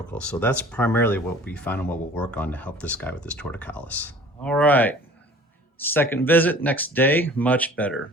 So that's primarily what we found and what we'll work on to help this guy with his torticollis. All right. Second visit, next day, much better.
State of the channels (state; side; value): normal; both; correlation 0.47